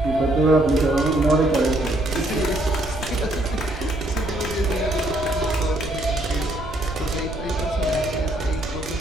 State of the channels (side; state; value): right; noise; rumble, 11 dB below the sound